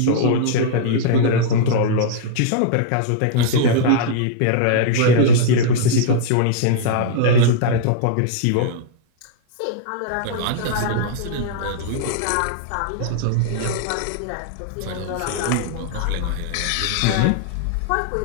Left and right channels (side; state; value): both; different; correlation -0.02